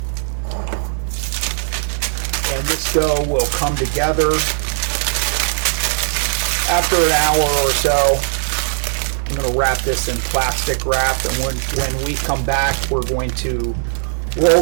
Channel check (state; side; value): silent; left; digital silence